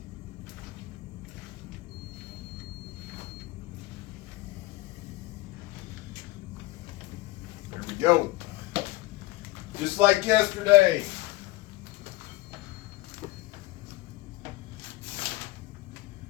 There we go. Just like yesterday.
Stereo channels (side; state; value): right; quieter; 19.3 dB